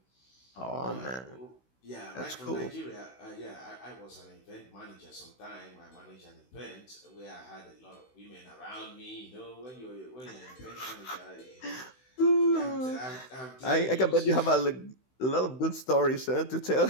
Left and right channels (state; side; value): late; right; 16 ms